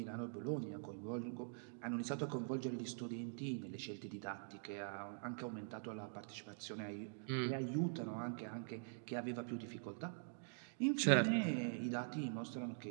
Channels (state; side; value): silent; left; digital silence